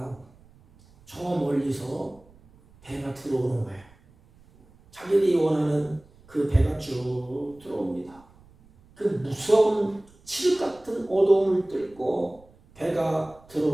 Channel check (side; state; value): right; noise; rumble, 27 dB below the sound